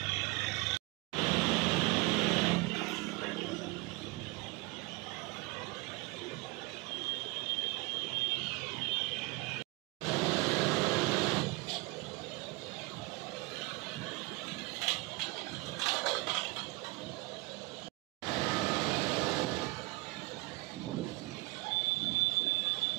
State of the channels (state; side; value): quieter; left; 24.7 dB